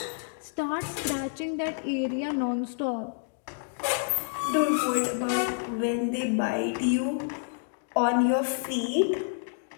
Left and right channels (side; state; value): right; silent; digital silence